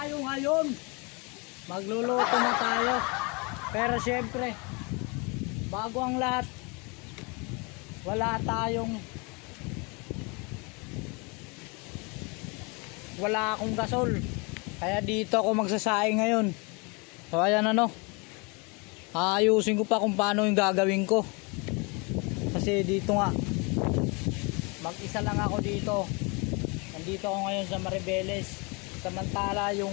ngayon. Magluluto na tayo. Pero syempre, bago ang lahat, wala akong gasol. Kaya dito ako magsasaing ngayon. So ayan ayusin ko pa kung paano yung gagawin ko. Kasi dito nga, mag-isa lang ako dito. Nandito ako ngayon sa Maribeles. Samantala yung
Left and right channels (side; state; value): right; quieter; 30.3 dB